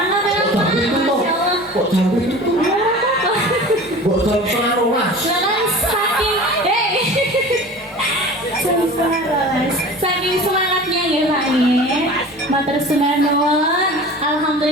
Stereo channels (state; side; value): normal; both; correlation 0.38